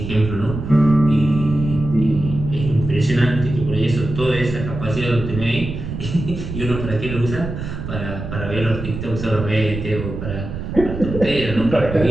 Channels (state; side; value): noise; right; rumble, 7 dB below the sound